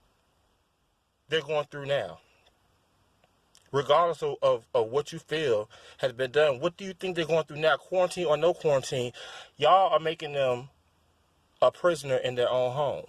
they're going through now? Regardless of what you feel has been done, what do you think they're going through now? Quarantine or no quarantine, y'all are making them a prisoner in their own home.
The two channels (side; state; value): both; identical; correlation 1.00